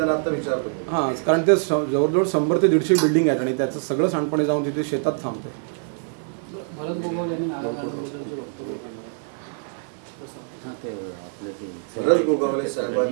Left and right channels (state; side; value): silent; left; 63 dB below the other